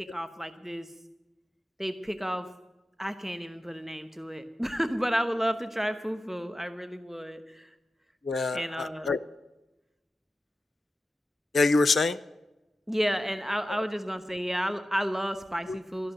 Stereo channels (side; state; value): both; normal; correlation 0.93